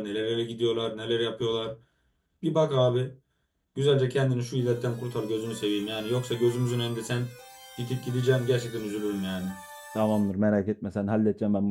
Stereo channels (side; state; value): both; identical; correlation 1.00